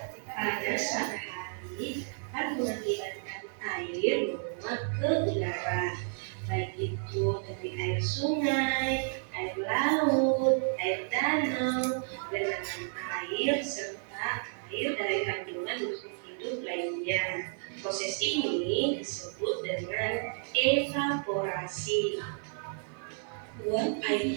Pada suatu hari akan mengakibatkan air menguap ke udara, baik itu dari air sungai, air laut, air danau, genangan air, serta air dari kandungan makhluk hidup lainnya. Proses ini disebut dengan evaporasi. Uap air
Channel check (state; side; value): silent; left; 57 dB below the other